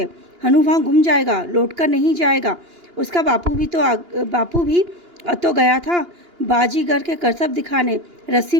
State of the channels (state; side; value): late; left; 2.9 ms